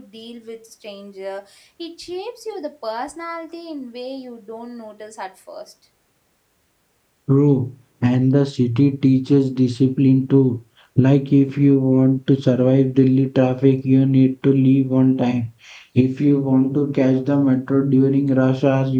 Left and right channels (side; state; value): both; identical; correlation 1.00